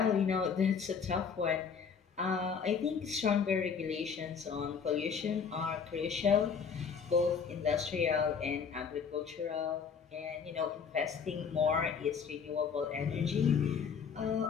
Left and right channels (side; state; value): right; quieter; 6.3 dB